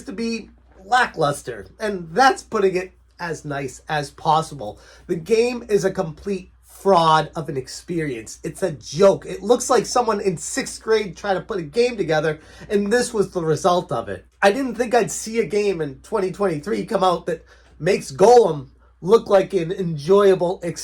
to be lackluster, and that's putting it as nice as possible. The game is a complete fraud of an experience. It's a joke. It looks like someone in 6th grade tried to put a game together, and this was the result of it. I didn't think I'd see a game in 2023 come out that makes Golem look like an enjoyable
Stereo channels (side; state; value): both; identical; correlation 1.00